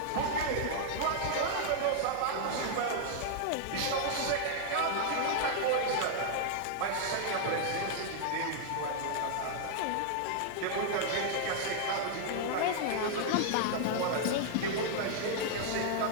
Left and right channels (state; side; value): different; both; correlation -0.01